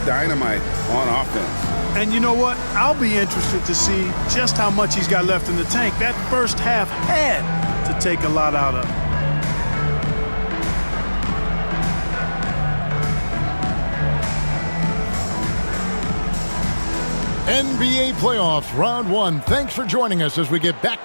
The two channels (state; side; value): inverted; both; correlation -1.00